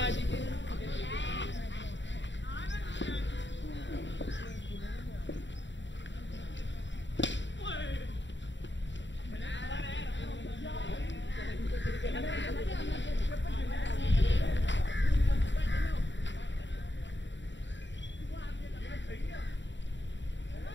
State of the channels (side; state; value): right; late; 0.53 ms